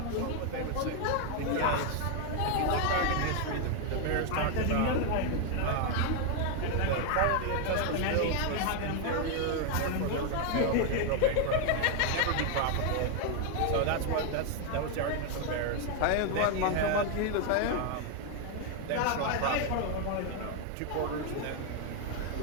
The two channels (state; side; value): different; both; correlation 0.01